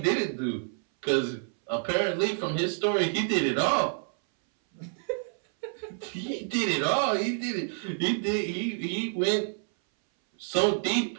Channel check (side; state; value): left; silent; 59 dB below the other